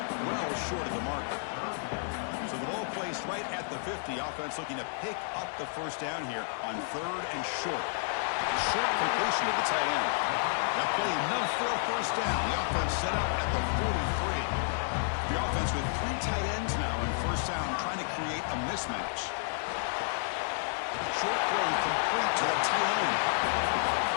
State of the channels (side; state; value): right; silent; digital silence